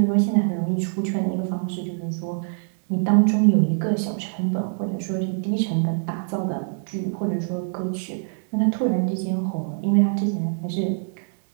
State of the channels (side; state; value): left; silent; digital silence